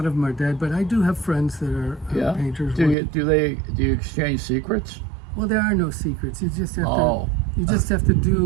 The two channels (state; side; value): drops out; left; at 3.0 s